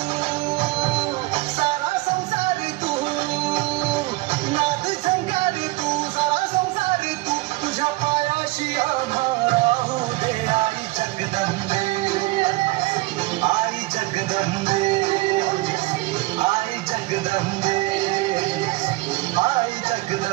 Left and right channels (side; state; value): left; quieter; 20.9 dB